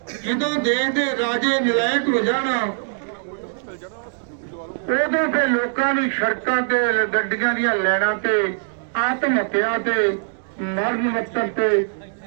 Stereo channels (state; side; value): silent; left; digital silence